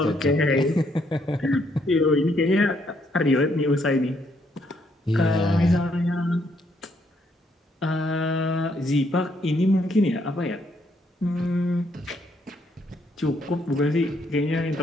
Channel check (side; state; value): both; normal; correlation 0.72